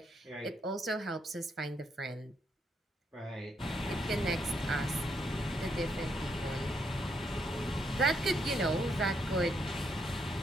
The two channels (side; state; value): both; normal; correlation 0.76